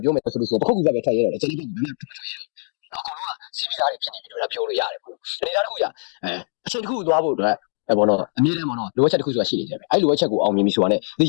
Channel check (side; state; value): right; silent; 64 dB below the other